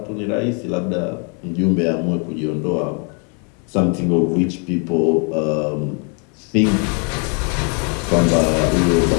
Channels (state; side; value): quieter; right; 37.5 dB